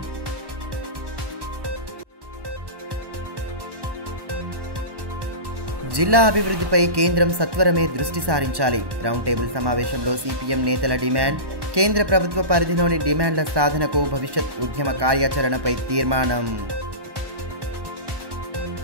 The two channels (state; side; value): late; left; 1.1 ms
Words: జిల్లా అభివృద్ధిపై కేంద్రం సత్వరమే దృష్టి సారించాలి రౌండ్ టేబుల్ సమావేశంలో సిపిఎం నేతల డిమాండ్ కేంద్ర ప్రభుత్వ పరిధిలోని డిమాండ్ల సాధనకు భవిష్యత్ ఉద్యమ కార్యాచరణపై తీర్మానం